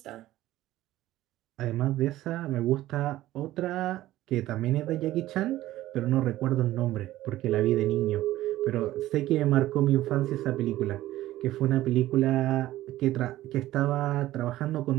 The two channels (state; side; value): quieter; left; 15.3 dB